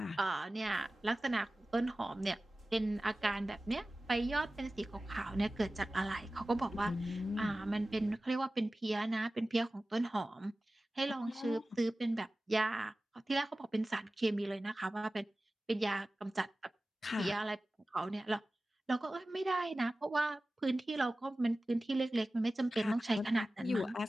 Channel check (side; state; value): both; normal; correlation 0.96